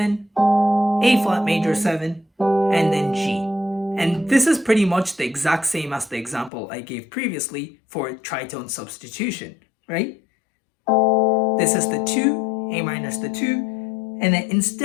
A flat major 7, and then G. And this is pretty much the exact same as the example I gave previously for tritone substitution, right? This is the 2, A minor is the 2, and then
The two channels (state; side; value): drops out; right; at 6.5 s